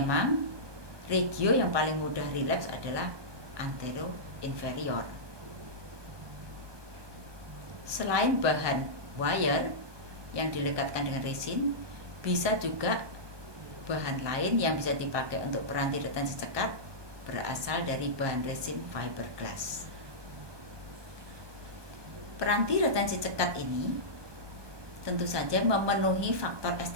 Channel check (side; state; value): left; late; 1.2 ms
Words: regio yang paling mudah relapse adalah antero-inferior. Selain bahan wire yang dilekatkan dengan resin, bisa juga bahan lain yang bisa dipakai untuk peranti retensi cekat berasal dari bahan resin fiberglass. Peranti retensi cekat ini tentu saja memenuhi faktor